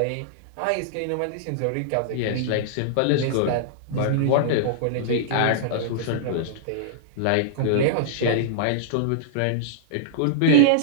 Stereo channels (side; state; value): both; different; correlation -0.02